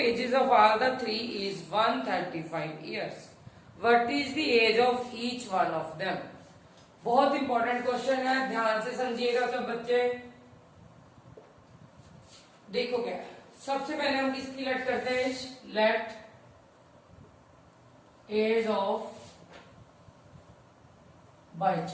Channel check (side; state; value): both; identical; correlation 1.00